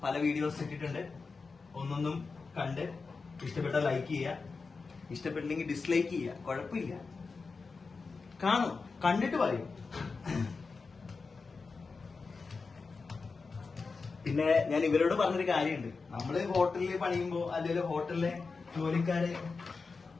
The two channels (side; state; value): right; quieter; 4.4 dB